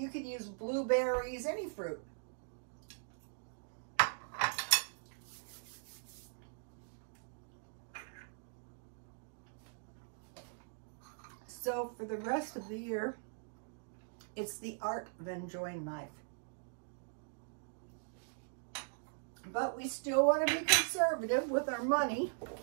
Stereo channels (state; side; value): silent; left; digital silence